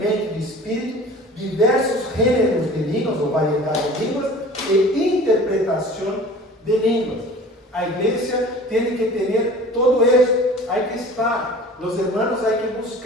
de espírito, diversos gêneros de línguas ou variedade de línguas e interpretação de línguas. A igreja tem que ter todo isso. Hay que estar, os irmãos, hay que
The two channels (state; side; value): normal; both; correlation 0.43